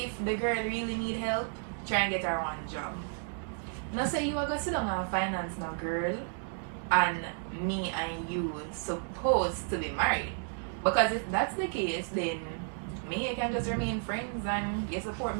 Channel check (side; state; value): left; silent; 56 dB below the other